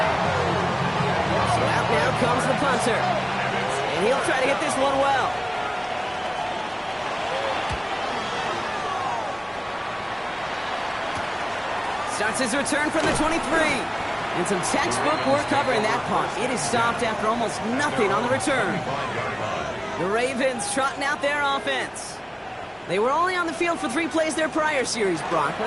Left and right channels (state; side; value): identical; both; correlation 1.00